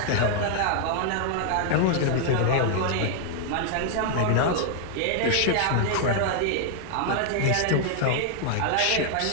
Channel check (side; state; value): both; different; correlation 0.00